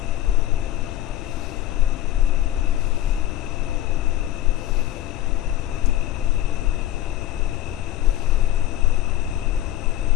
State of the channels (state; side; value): quieter; right; 13.5 dB